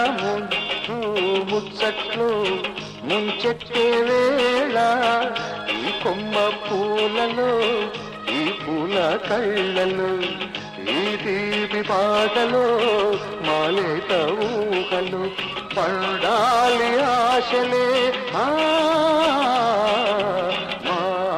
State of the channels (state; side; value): identical; both; correlation 1.00